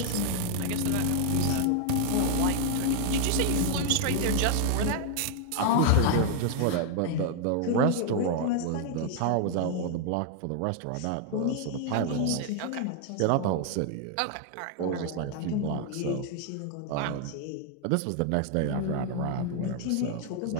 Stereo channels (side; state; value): both; different; correlation 0.00